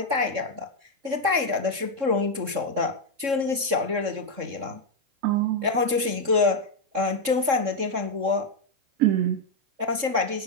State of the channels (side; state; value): left; late; 3.7 ms